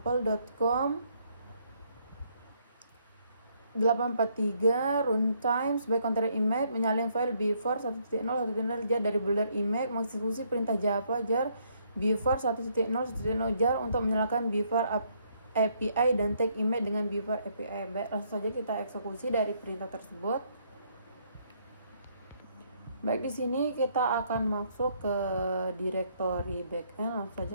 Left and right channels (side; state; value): both; inverted; correlation -0.70